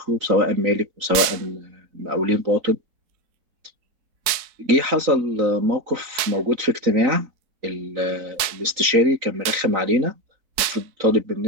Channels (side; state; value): left; late; 4.6 ms